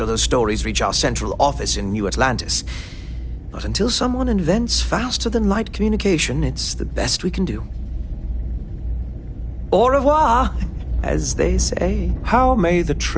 those stories reach our central office in New Atlantis. But until someone invents faster-than-light communication, it's the best we can do. Au revoir, as they say. How may the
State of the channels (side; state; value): both; identical; correlation 1.00